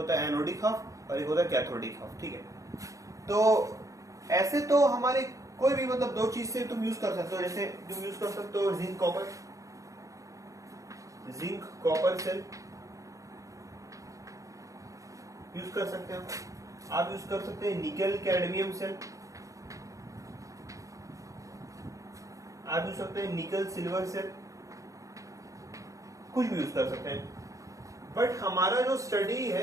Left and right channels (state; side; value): late; left; 0.16 ms